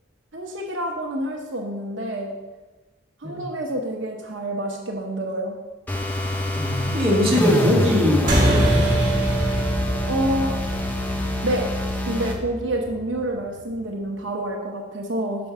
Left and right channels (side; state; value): both; normal; correlation 0.60